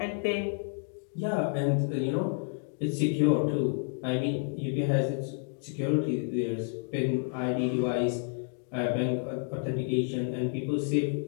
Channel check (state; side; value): silent; right; 58 dB below the other